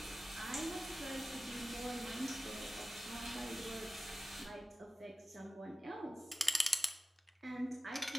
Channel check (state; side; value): normal; both; correlation 0.96